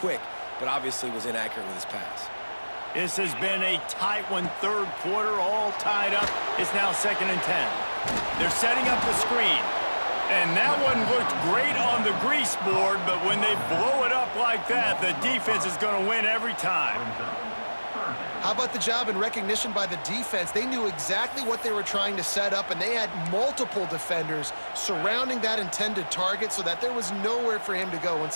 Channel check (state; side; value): inverted; both; correlation -1.00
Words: but obviously was inaccurate with his pass. This has been a tight one, 3rd quarter, all tied up. It's now 2nd and 10. They're setting up the screen. And that one looked great on the grease board, but when they blow it up like that, the defense is going to win every time. How about the job and recognition by the defense? They knew exactly what they were trying to set up, and they had multiple defenders surrounding that intended target so that there was nowhere for him to go